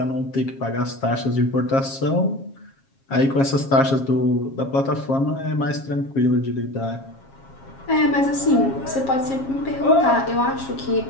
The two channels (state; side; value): late; right; 7.4 ms